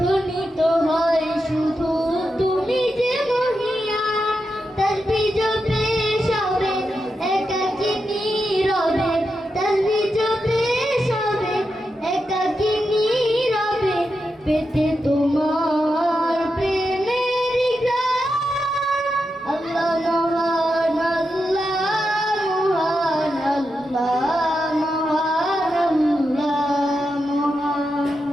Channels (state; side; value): normal; both; correlation 0.87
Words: হয় শুধু তুমি যে মহিয়ান। তাসবিহ জপে সবে একাকী নীরবে, তাসবিহ জপে সবে একাকী নীরবে, পেতে তোমার প্রেমের গান। আল্লাহ মহান, আল্লাহ মহান, আল্লাহ মহান,